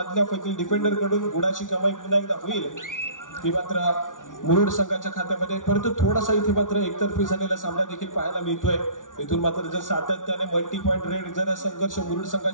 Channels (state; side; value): late; right; 0.88 ms